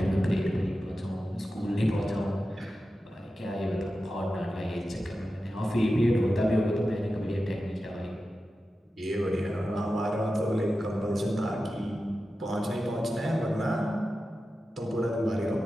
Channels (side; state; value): both; normal; correlation 0.93